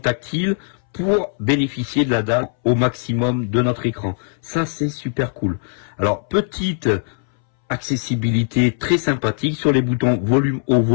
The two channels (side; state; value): right; silent; 64 dB below the other